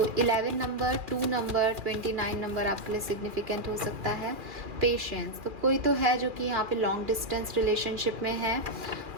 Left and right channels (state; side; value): late; left; 2.4 ms